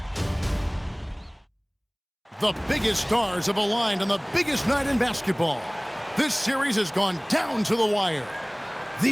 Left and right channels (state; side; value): identical; both; correlation 1.00